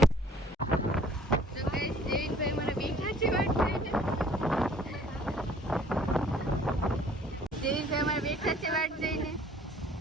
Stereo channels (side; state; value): both; normal; correlation 0.55